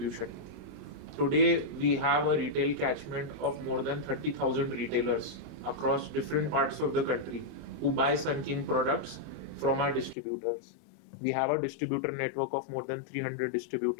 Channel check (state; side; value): drops out; right; at 10.2 s